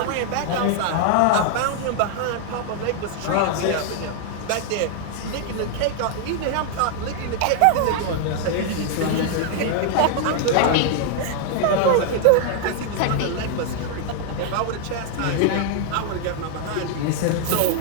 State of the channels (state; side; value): different; both; correlation 0.00